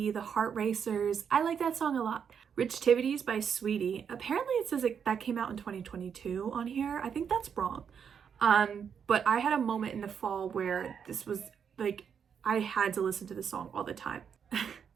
The Heart Racers. I like that song a lot. Rich Tivities by Sweetie. Apparently it says that came out in 2022 on here. I think that's wrong. But I had a moment in the fall where this was like, I had to listen to this song all the time.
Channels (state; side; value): quieter; left; 7.3 dB